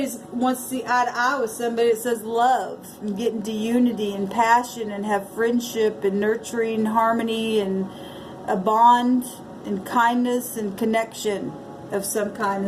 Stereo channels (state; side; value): identical; both; correlation 1.00